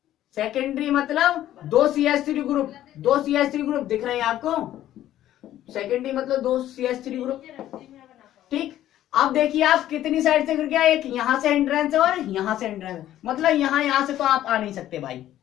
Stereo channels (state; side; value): quieter; right; 12.8 dB